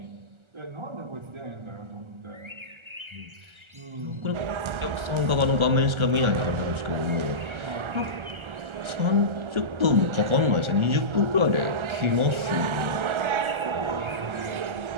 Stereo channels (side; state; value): left; late; 1.3 ms